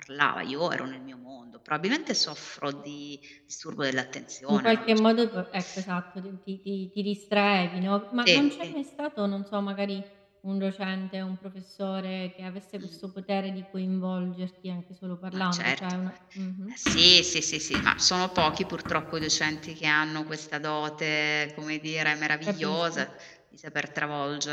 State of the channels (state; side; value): identical; both; correlation 1.00